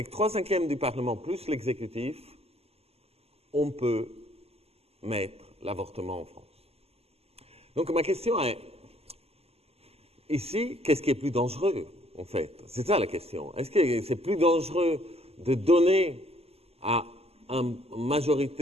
3/5 du Parlement plus l'exécutif, on peut mettre l'avortement en France. Donc ma question est, ici, qu'est-ce qui est plus dangereux, en fait? C'est ça la question. Est-ce que c'est plus dangereux de donner à une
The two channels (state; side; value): late; left; 0.29 ms